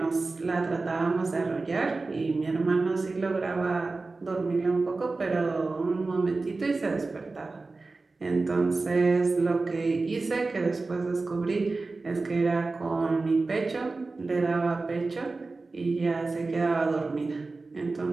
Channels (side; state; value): left; quieter; 3.6 dB